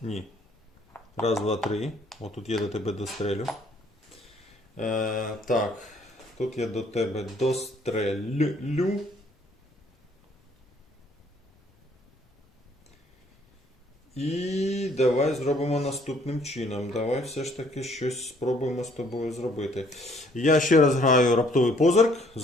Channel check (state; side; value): normal; both; correlation 0.63